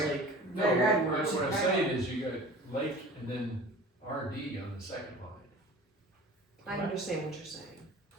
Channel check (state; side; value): normal; both; correlation 0.41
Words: like. No, Right, right. what I'm saying is you got Lake and then RD on the second line. I understand what you're saying.